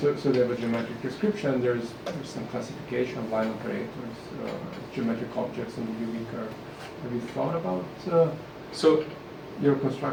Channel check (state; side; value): identical; both; correlation 1.00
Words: Okay. so they have a geometric description. There's some classification of line operators, geometric objects on the UV curve. Have you thought about So, your